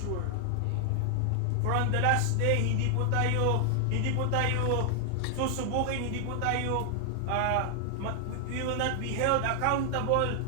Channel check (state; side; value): different; both; correlation 0.00